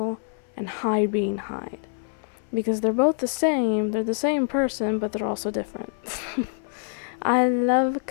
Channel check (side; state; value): right; silent; 58 dB below the other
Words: and Hyde being Hyde. Because they're both the same, they're the same person, but they're also different. I love